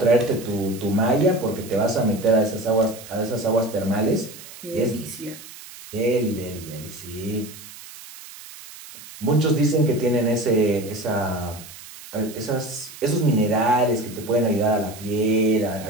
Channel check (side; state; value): right; noise; hiss, 16 dB below the sound